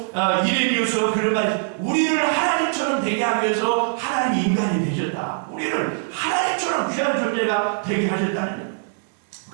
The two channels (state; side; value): silent; left; 64 dB below the other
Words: 이레미우서 그런 말, 우리를 하나님처럼 되게 하기 위해서 하나님이 인간이 되셨다. 우리를 하나님처럼 귀한 존재가 되게 하셨다는 거예요.